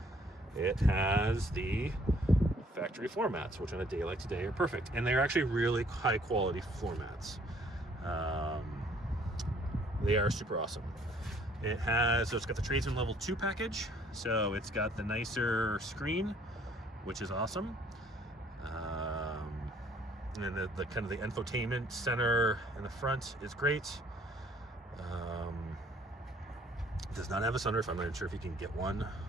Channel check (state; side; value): normal; both; correlation 0.61